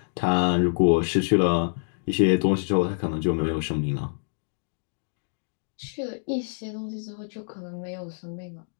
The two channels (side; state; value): right; silent; digital silence